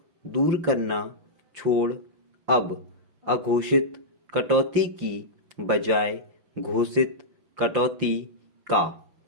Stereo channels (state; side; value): late; left; 5.8 ms